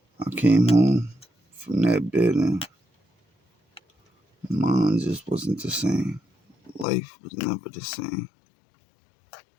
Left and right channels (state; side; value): drops out; right; at 6.9 s